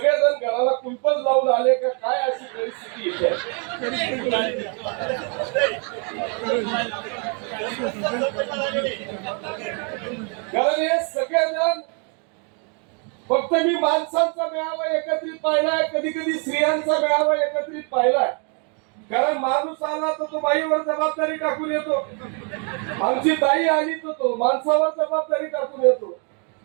घराला कुलपच लावून आले का काय, अशी परिस्थिती येते. कारण हे सगळेजण फक्त मी माणसांचा मेळावा एकत्रित पाहिलाय, कधी कधी स्त्रियांचा मेळावा एकत्रित पाहिलाय. कारण माणूस आला तर तो बाईवर जबाबदारी टाकून येतो, आमची ताई आली तर तो माणसावर जबाबदारी टाकून येतो.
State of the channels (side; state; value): left; quieter; 37.8 dB